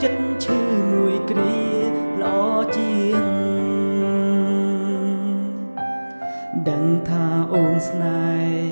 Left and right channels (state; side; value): inverted; both; correlation -1.00